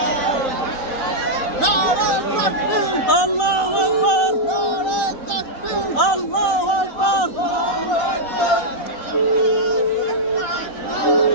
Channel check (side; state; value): right; late; 4.1 ms